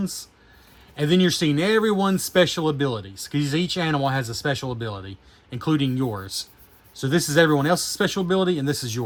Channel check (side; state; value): both; identical; correlation 1.00